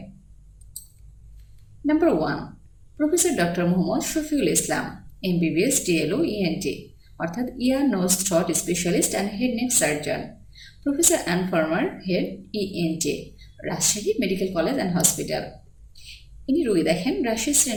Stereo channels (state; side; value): identical; both; correlation 1.00